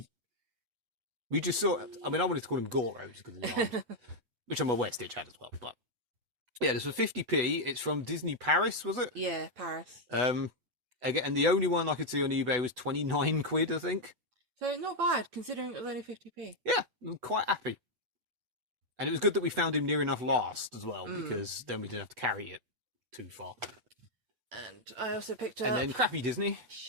We just saw it. I mean, I wanted to call him Goro just because of the arms, which I'm aware Stitch had as well. But yeah, this was 50p. It's from Disney Paris, was it? Yeah, Paris. Again, and the only one I could see on eBay was 29 quid, I think. So not bad, considering it was only 50p. Yeah, I'm quite happy. And it was good that we found him near enough last as well, because then we didn't have to carry it too far. And I also picked up... And then crappy Disney.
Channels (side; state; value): left; late; 8.1 ms